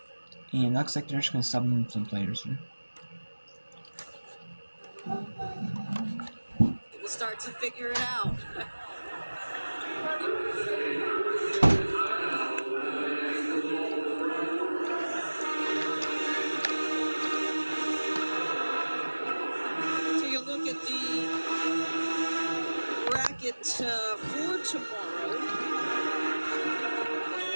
looks like they're just gonna sub in some players here. We'll start to figure it out. Take a look at the bracket for tomorrow.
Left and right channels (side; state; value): both; inverted; correlation -1.00